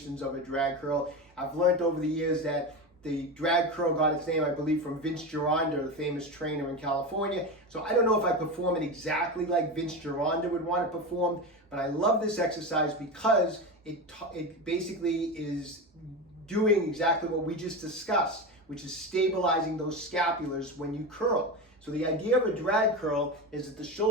of a drag curl. I've learned over the years that The drag curl got its name, I believe, from Vince Gironda, the famous trainer in California. So I don't know if I perform it exactly like Vince Gironda would want it performed, but I love this exercise because it basically is doing exactly what we just discussed, which is stabilizing those scapulars when you curl. So the idea of a drag curl is that the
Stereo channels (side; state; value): both; normal; correlation 0.21